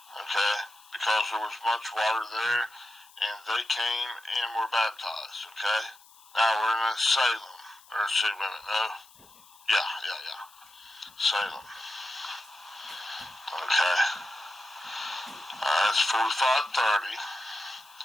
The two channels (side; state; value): left; noise; hiss, 25 dB below the sound